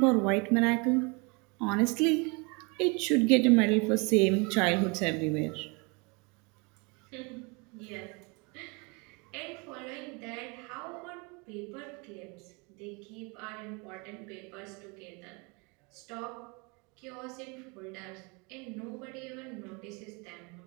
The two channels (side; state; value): left; quieter; 30.3 dB